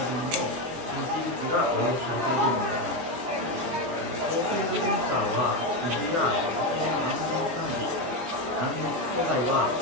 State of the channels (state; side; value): late; left; 24 ms